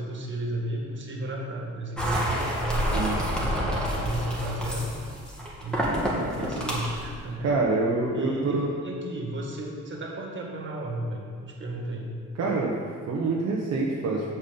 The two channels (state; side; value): normal; both; correlation 0.42